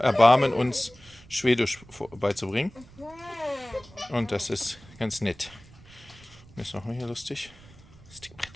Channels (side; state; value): right; noise; rumble, 22 dB below the sound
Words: uns Schwedisch beizubringen. Und das ist ganz nett. Ist noch mal hier lustig.